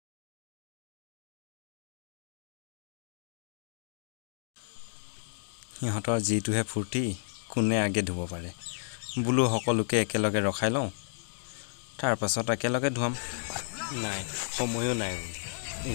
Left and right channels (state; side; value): silent; right; digital silence